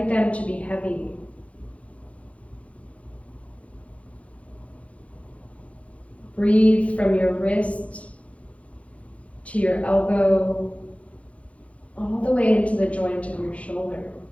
them to be heavy? Breathe from your wrist to your elbow, all the way into the joint of your shoulder.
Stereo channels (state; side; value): late; right; 0.064 ms